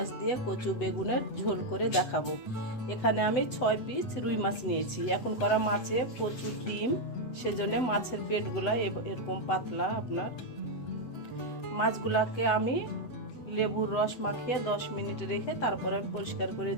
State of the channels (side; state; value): right; late; 7.9 ms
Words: দিয়ে কচু বেগুনের ঝোল করে দেখাবো। এখানে আমি 6 পিস রুই মাছ নিয়েছি। এখন করা মাছে প্রচুর ডিম, সেজন্য মাছের পেটগুলা এরকম পাতলা। আপনার মাছগুলাকে আমি লেবুর রস মাখিয়ে 10 মিনিট রেখে তারপরে পরিষ্কার করে